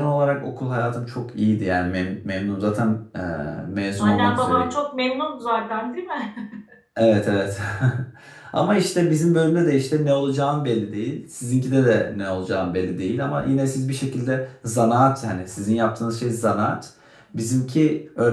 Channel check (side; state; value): both; identical; correlation 1.00